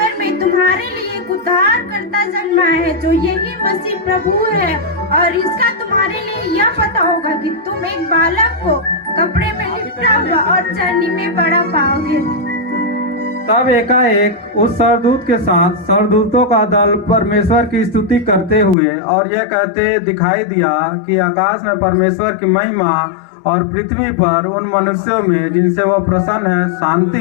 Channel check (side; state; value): right; drops out; at 18.8 s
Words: में तुम्हारे लिए एक उद्धारकर्ता जन्मा है जो यही मसीह प्रभु है। और इसका तुम्हारे लिए यह पता होगा कि तुम एक बालक को कपड़े में लिपटा हुआ और चरनी में बड़ा पाओगे। तब एकाएक उस सरदूत के साथ सरदूतों का दल परमेश्वर की स्तुति करते हुए और यह कहते दिखाई दिया कि आकाश में परमेश्वर की महिमा और पृथ्वी पर उन मनुष्यों में जिनसे वो प्रसन्न है